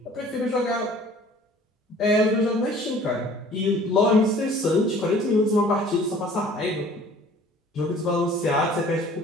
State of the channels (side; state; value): both; normal; correlation 0.51